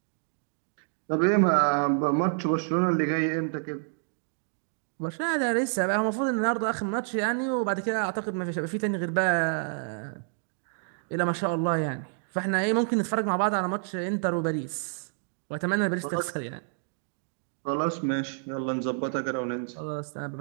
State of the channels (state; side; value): silent; left; digital silence